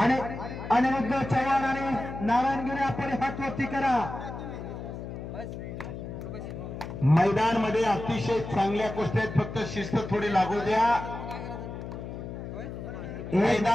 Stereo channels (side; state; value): left; noise; hum, 8 dB below the sound